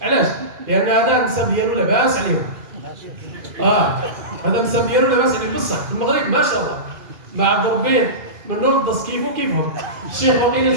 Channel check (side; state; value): left; late; 2.5 ms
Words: علاش؟ لان هذا النسب ديالو لاباس عليهم. هذا النسب ديالو لاباس عليه بصح في المغرب ما شاء الله ما عبد ربي من نور الدص كيفو كيفهم. الشيخ وقيل